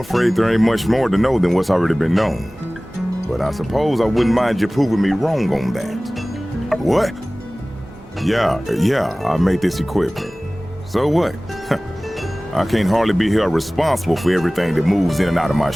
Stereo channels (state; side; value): normal; both; correlation 0.98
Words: there ain't much more to know than what's already been known. But I suppose I wouldn't mind you proving me wrong on that. What? Yeah, I made this equipment. So what? I can't hardly be held responsible for everything that moves in and out of my